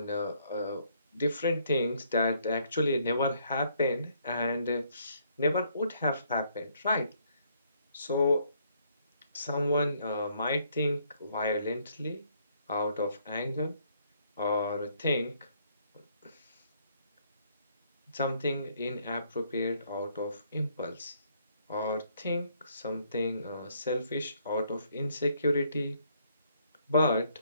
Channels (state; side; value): inverted; both; correlation -0.68